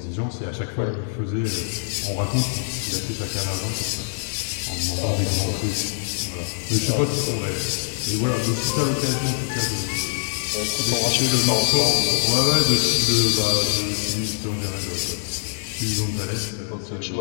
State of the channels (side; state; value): right; silent; 63 dB below the other